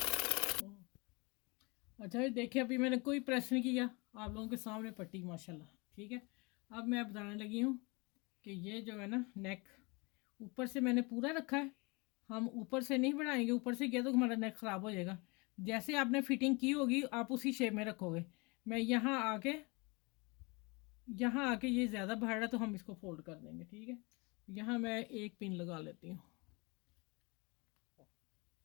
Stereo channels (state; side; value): quieter; right; 28.0 dB